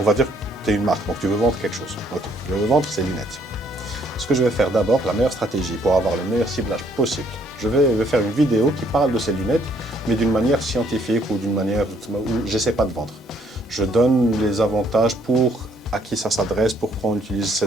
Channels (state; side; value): normal; both; correlation 0.66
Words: va dire que tu es une marque, donc tu veux vendre quelque chose. Ok, je veux vendre ces lunettes. Ce que je vais faire d'abord, la meilleure stratégie pour avoir le meilleur ciblage possible, je vais faire une vidéo qui parle de ces lunettes, mais d'une manière scientifique ou d'une manière où je n'essaie pas de vendre. Je donne les avantages à qui ça s'adresse, pourquoi on utilise